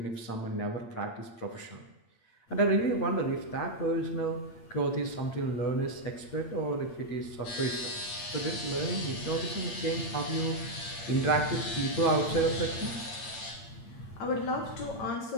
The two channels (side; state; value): right; late; 8.7 ms